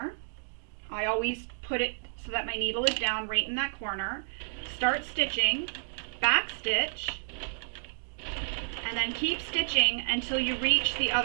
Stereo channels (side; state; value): left; silent; digital silence